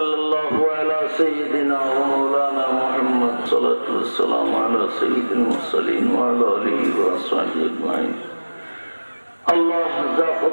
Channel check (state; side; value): inverted; both; correlation -1.00